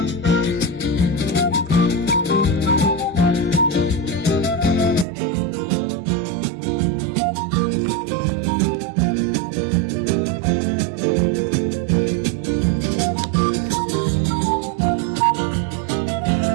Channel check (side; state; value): left; drops out; at 5.1 s